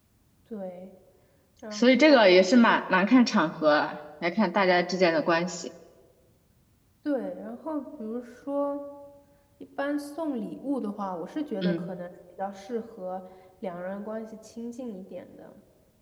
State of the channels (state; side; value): identical; both; correlation 1.00